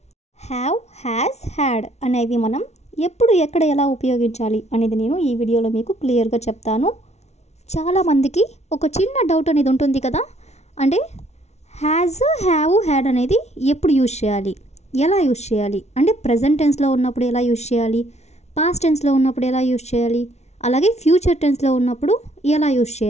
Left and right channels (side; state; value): right; late; 0.32 ms